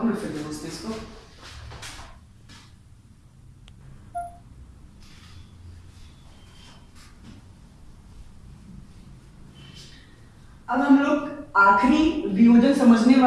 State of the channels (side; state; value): both; identical; correlation 1.00